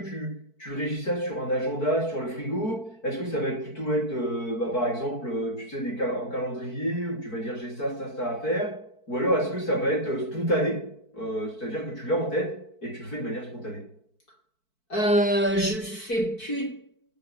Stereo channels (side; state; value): right; late; 4.6 ms